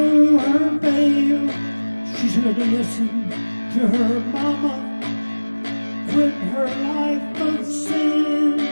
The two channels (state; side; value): inverted; both; correlation -1.00